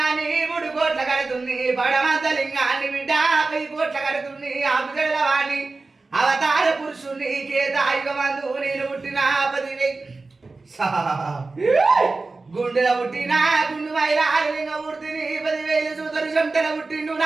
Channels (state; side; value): quieter; left; 3.7 dB